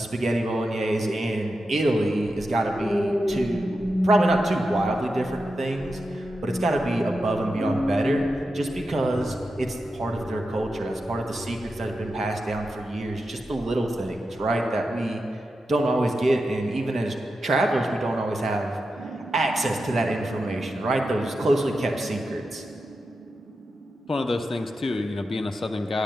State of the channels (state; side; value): normal; both; correlation 0.89